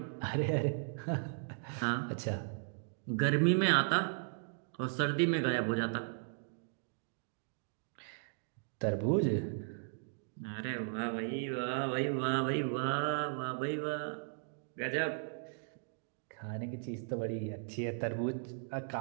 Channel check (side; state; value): left; silent; digital silence